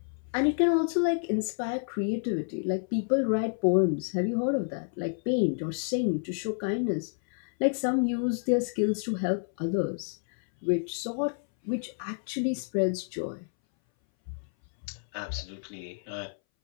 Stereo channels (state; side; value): silent; right; 58 dB below the other